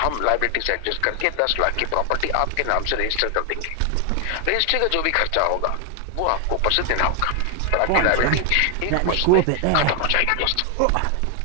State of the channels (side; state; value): both; different; correlation 0.00